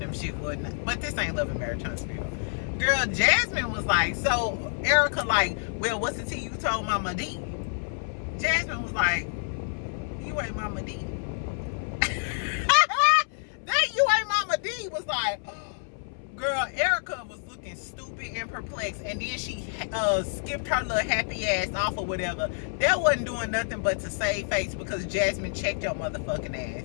shit wouldn't. But this ain't Love and Marriage Huntsville. Girl, Jasmine was like, so Erica like, well, what's the tea you told Momma Dee? Jasmine was like, you ain't Momma Dee. was like, girl, Erica was looking stupid and perplexed, and then she skipped her little happy ass off or whatever. That wasn't doing nothing but to save face because Jasmine checked your motherfucking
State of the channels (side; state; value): right; silent; 59 dB below the other